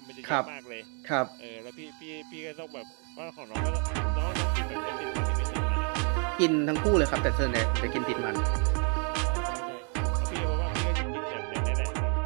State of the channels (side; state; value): left; quieter; 39.1 dB